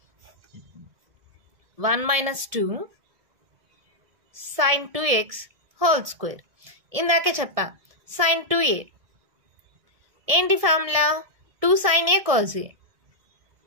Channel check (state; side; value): late; left; 1.7 ms